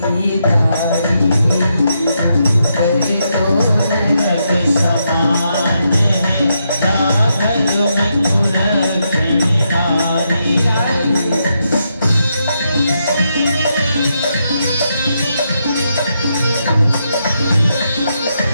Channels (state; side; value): inverted; both; correlation -0.82